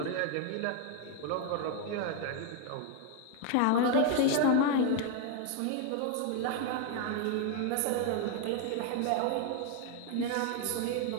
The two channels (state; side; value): different; both; correlation 0.00